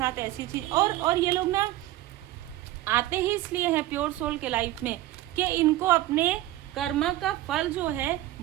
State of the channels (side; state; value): left; quieter; 15.4 dB